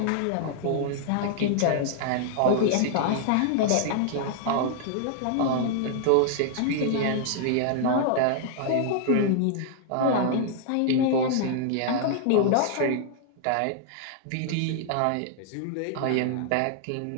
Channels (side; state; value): both; different; correlation -0.01